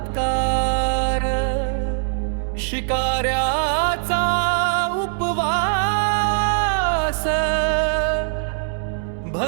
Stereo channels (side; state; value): left; silent; digital silence